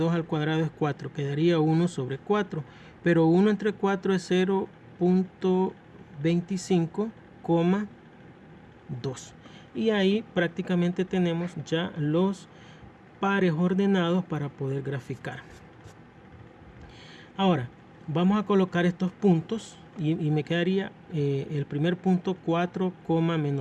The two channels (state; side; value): identical; both; correlation 1.00